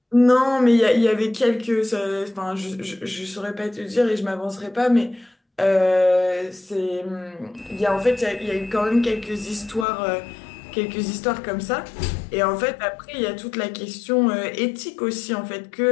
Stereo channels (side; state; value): right; drops out; at 9.9 s